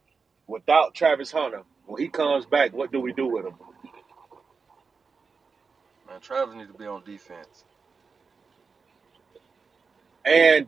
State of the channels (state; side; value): quieter; left; 5.0 dB